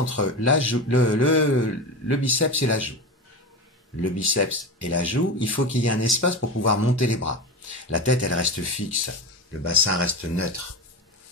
le biceps et la joue. Le biceps et la joue, il faut qu'il y ait un espace pour pouvoir monter les bras. La tête, elle reste fixe. Le bassin reste neutre.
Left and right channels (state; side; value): normal; both; correlation 0.23